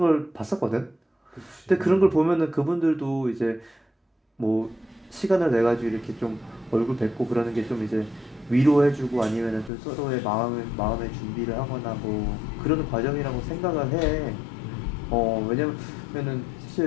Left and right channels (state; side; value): drops out; right; at 9.7 s